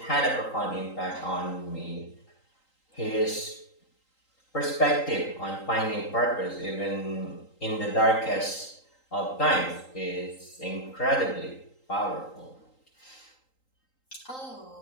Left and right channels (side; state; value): right; late; 3.8 ms